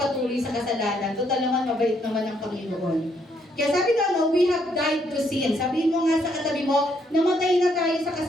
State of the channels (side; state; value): both; normal; correlation 0.72